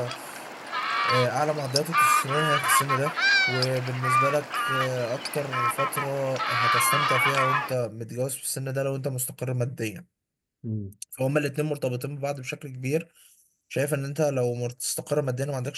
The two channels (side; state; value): both; identical; correlation 1.00